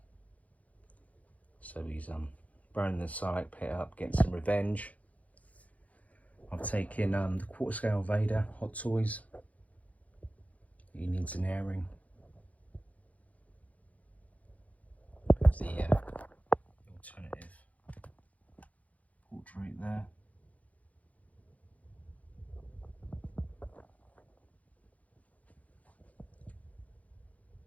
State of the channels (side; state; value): right; late; 0.069 ms